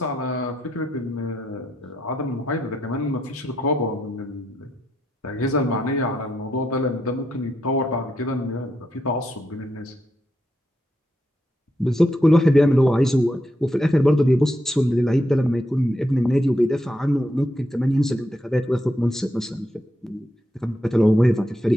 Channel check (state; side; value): normal; both; correlation 0.81